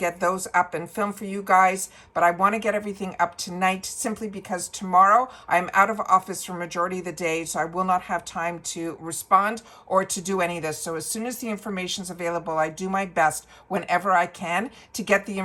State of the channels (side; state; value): both; identical; correlation 1.00